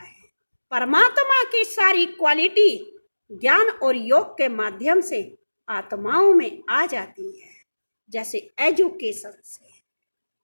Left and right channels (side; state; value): both; inverted; correlation -1.00